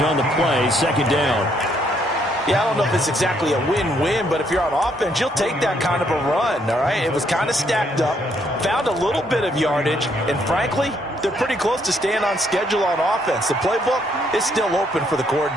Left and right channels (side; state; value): both; normal; correlation 0.71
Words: on the play. 2nd down. Yeah, I don't know if it's exactly a win-win, but if you're on offense, you'll take that kind of a run, all right? It was kind of stacked up, found a little bit of yardage, and frankly, they're pretty close to staying on schedule on offense. The playbook is still open for the